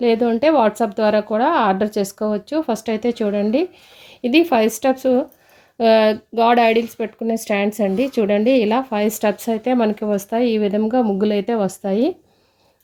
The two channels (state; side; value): identical; both; correlation 1.00